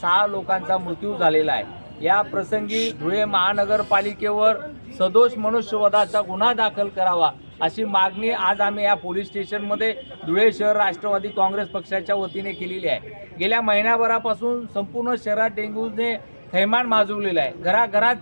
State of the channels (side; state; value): both; inverted; correlation -1.00